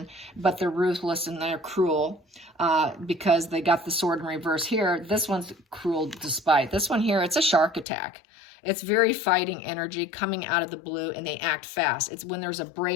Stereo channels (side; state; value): right; drops out; at 7.9 s